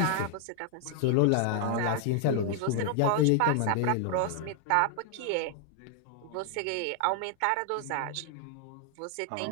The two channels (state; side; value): different; both; correlation 0.00